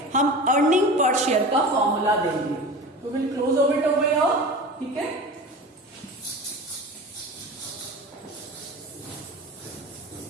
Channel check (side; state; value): both; normal; correlation 0.34